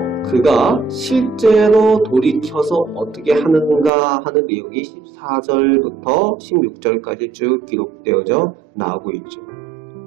그가 실제로 돌이켜서 어떻게 하는가 하는 내용이 14절부터 16절까지 쭉 기록되어져 나오고 있죠.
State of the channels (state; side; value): drops out; left; at 3.9 s